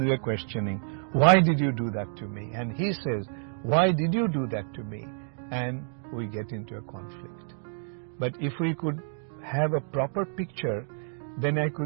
we are questioning, why did you do that to me? And he says, why did you do that to me? And we get into a conflict. But if we could have a proper picture, then I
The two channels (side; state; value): left; silent; 59 dB below the other